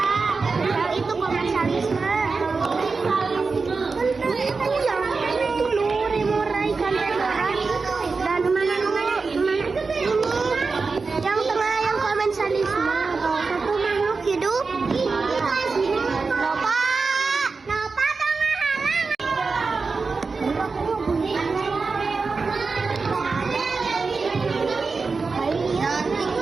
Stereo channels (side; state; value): left; quieter; 4.4 dB